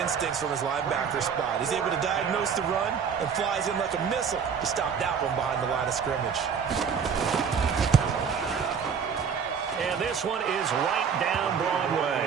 from his linebacker spot. He's able to diagnose the run and flies in like a missile to stop that one behind the line of scrimmage. And this one is right down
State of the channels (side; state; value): left; quieter; 6.7 dB